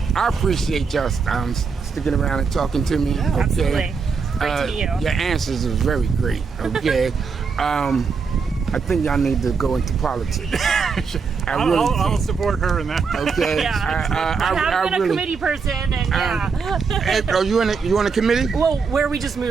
I appreciate y'all sticking around and talking to me. Yeah, okay. Absolutely. Great to meet you. Your answers are very great. Okay. I think y'all need to go into politics. I'll support her in that. Okay. Yeah. I have been a committee person, and Hey, are you on a committee? well, where we just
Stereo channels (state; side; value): quieter; left; 5.3 dB